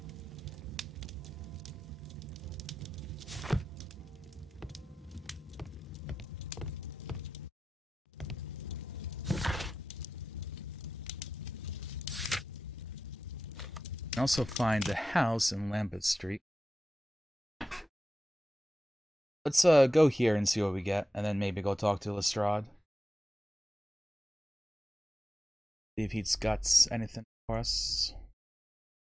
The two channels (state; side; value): normal; both; correlation 0.92